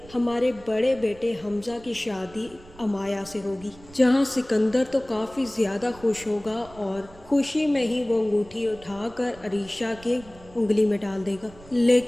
بڑے بیٹے حمزہ کی شادی امایا سے ہوگی، جہاں سکندر تو کافی زیادہ خوش ہوگا اور خوشی میں ہی وہ انگوٹھی اٹھا کر عریشہ کے انگلی میں ڈال دے گا۔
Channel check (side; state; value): right; noise; rumble, 21 dB below the sound